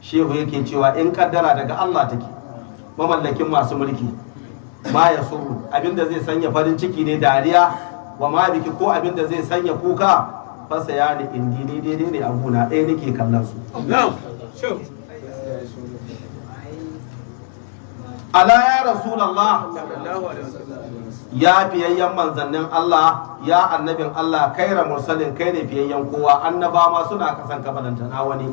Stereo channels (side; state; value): right; silent; digital silence